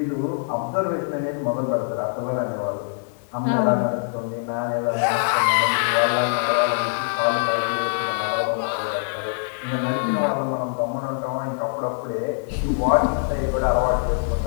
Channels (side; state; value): right; silent; digital silence